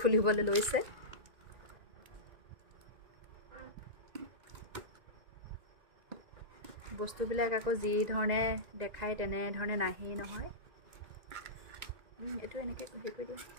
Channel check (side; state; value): left; late; 1.9 ms